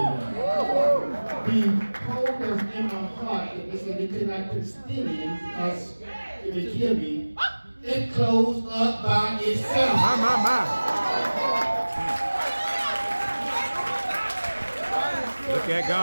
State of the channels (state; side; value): inverted; both; correlation -1.00